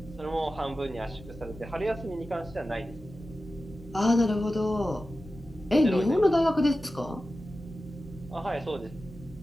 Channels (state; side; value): normal; both; correlation 0.94